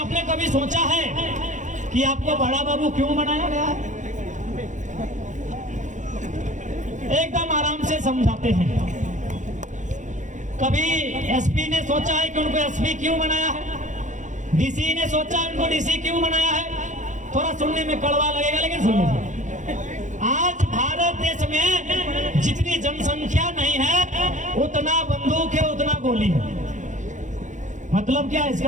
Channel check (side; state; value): left; late; 0.36 ms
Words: कभी सोचा है कि आपको बड़ा बाबू क्यों बनाया गया है? एकदम आराम से समझाते हैं। कभी एसपी ने सोचा है कि उनको एसपी क्यों बनाया है? डीसी ने सोचा है उनको डीसी क्यों बनाया है? थोड़ा सुनने में कड़वा लगेगा, लेकिन सुन लीजिए। आज भारत देश में जितनी जनसंख्या नहीं है, उतना बंदूक है, उतना गोली है। मतलब क्या है इसका?